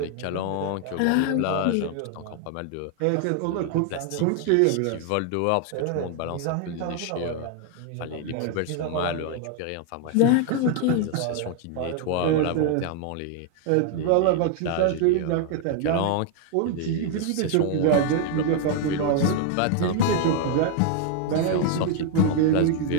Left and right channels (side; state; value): both; different; correlation 0.00